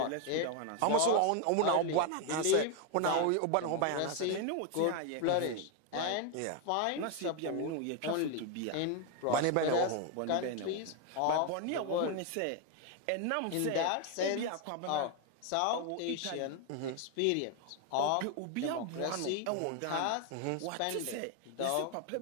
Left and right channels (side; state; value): both; different; correlation 0.01